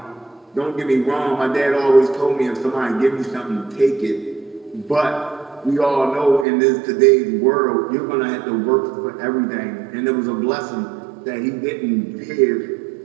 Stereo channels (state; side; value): drops out; left; at 6.5 s